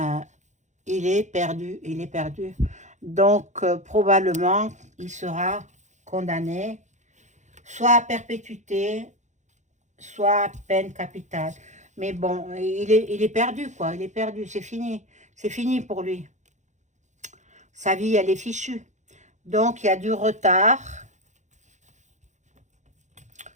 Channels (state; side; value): late; left; 0.35 ms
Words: il est perdu, il est perdu. Donc, probablement, il sera condamné soit à perpétuité, soit à peine capitale. Mais bon, il est perdu, quoi. Il est perdu, c'est fini. C'est fini pour lui. Sa vie, elle est fichue. Donc, il y a du retard.